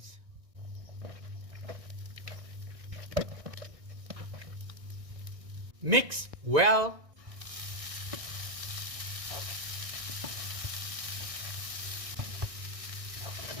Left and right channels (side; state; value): left; late; 1.6 ms